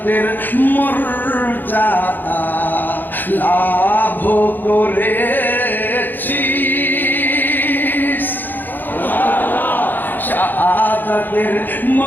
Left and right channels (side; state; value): right; late; 0.089 ms